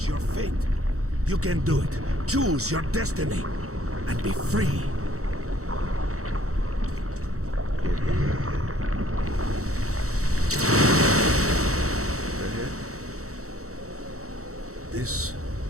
your fate. You can do it. Choose your destiny and be free. Can't do that. Right here? This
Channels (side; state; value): left; late; 0.65 ms